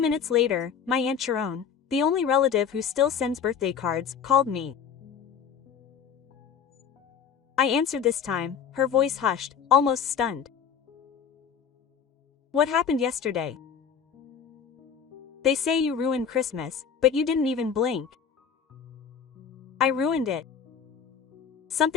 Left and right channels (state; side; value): quieter; right; 7.2 dB